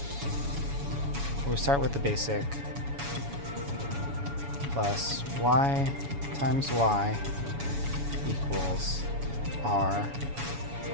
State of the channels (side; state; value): left; late; 7.1 ms